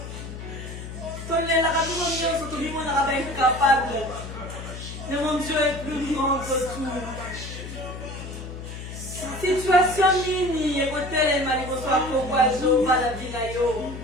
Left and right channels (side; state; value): left; noise; hum, 10 dB below the sound